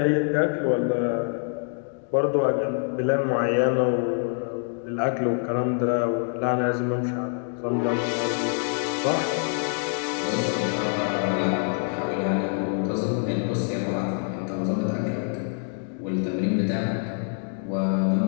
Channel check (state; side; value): silent; right; 56 dB below the other